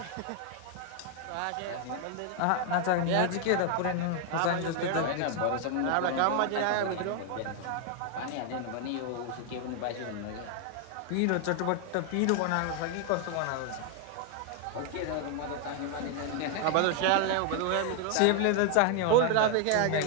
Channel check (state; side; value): different; both; correlation 0.00